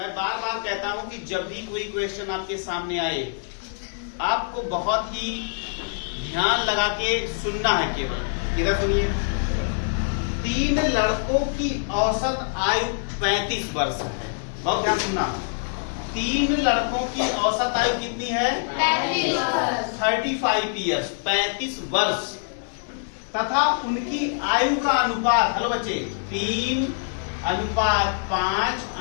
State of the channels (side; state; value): right; silent; digital silence